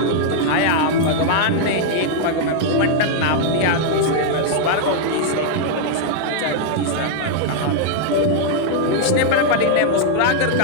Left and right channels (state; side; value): different; both; correlation -0.01